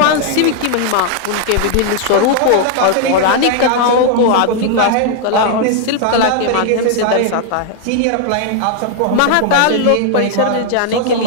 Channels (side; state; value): both; different; correlation 0.00